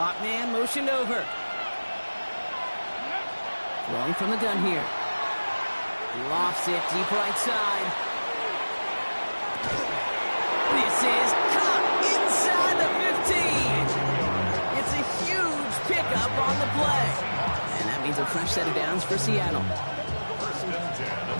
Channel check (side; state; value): both; inverted; correlation -1.00